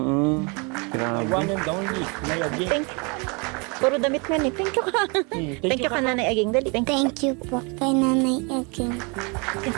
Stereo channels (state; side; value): quieter; left; 31.5 dB